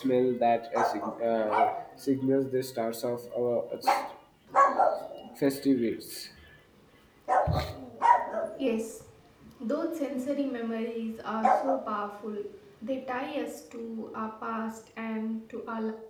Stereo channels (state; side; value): identical; both; correlation 1.00